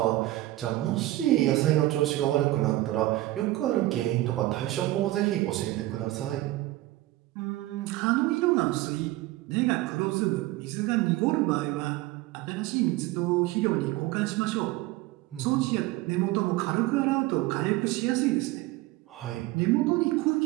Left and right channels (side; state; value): left; quieter; 17.4 dB